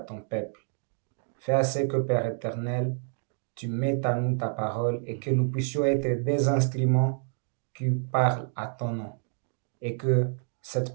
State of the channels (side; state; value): left; silent; digital silence